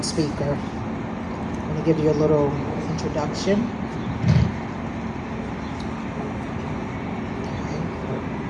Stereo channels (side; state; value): both; identical; correlation 1.00